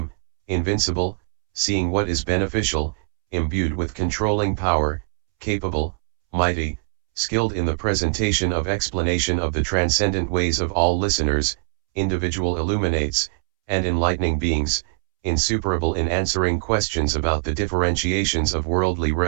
invincible, seeing what is beneficial, imbued with controlling power, capable, mighty, skilled in the presentation of explanation of the transcendent ways of all listeners, individual illuminates, and enlightening beings, insuperable in answering questions about the differentiations of worldly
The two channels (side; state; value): left; silent; 64 dB below the other